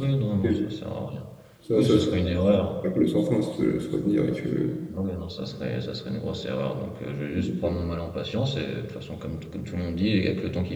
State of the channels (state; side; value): identical; both; correlation 1.00